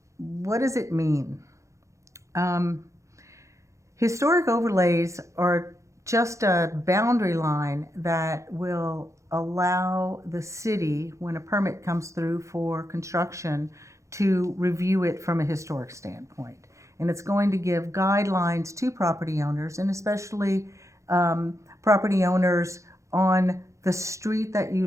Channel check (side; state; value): left; late; 0.15 ms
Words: what does it mean? Historic overlays are just a boundary line that will allow the city, when a permit comes through for construction, to review it from a historic standpoint. And it's going to give guidelines to property owners, and especially property owners on the street that you